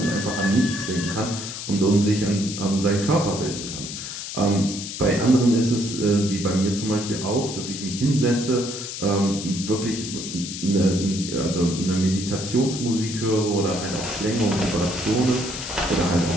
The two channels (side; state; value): left; noise; hiss, 8 dB below the sound